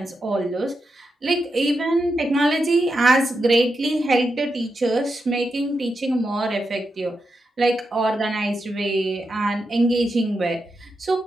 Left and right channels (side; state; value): both; normal; correlation 0.87